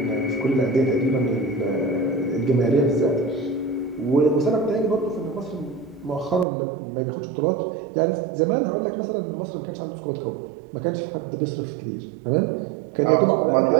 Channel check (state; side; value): drops out; left; at 6.5 s